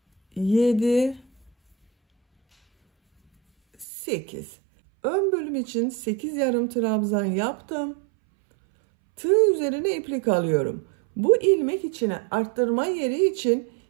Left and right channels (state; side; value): drops out; left; at 3.9 s